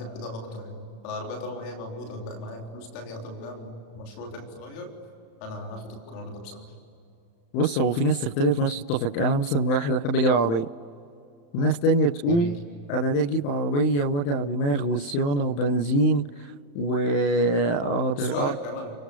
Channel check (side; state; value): right; late; 35 ms